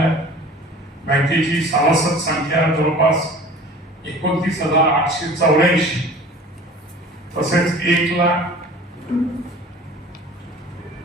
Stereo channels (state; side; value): normal; both; correlation 0.43